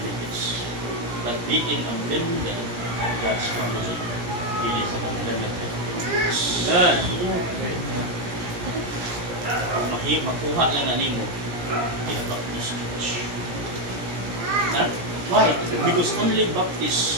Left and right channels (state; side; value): late; left; 17 ms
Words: But being a member of God's family, it is an unlimited benefits. Kung makuha lang na nimo in a Baptist church. Why? Because only